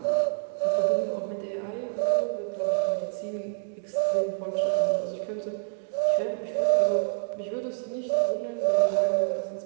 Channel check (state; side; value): silent; left; digital silence